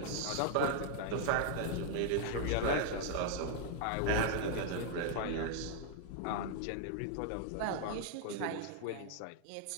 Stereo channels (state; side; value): different; both; correlation 0.00